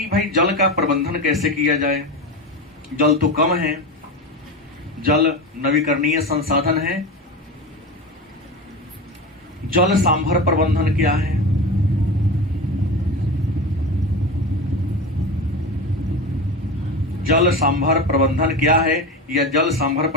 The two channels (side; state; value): both; normal; correlation 0.24